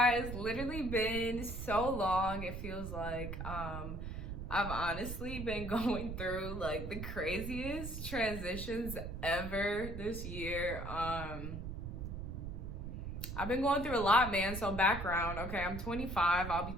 it's literally been so long. It feels like I've honestly been going through like the craziest transitions ever this year. I've been going through a lot, man. So background, okay, I'm 25, I'll be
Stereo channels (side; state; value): right; noise; rumble, 6 dB below the sound